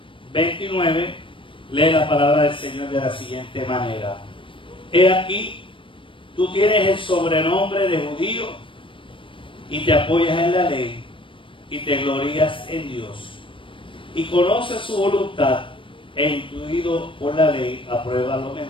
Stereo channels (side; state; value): right; late; 0.25 ms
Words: 29, lee la palabra del Señor de la siguiente manera. He aquí, tú tienes el sobrenombre de judío y te apoyas en la ley y te glorías en Dios y conoces su voluntad e intuido por la ley aprueba lo